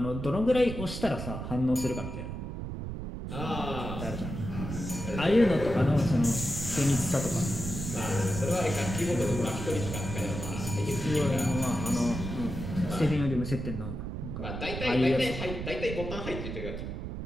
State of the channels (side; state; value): right; noise; rumble, 6 dB below the sound